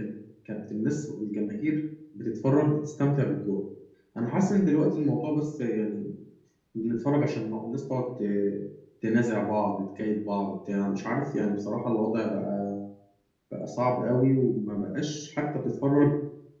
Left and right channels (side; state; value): both; identical; correlation 1.00